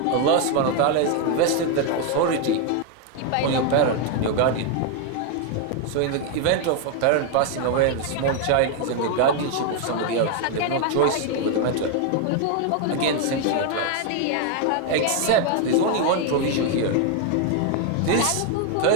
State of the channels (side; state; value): both; different; correlation 0.01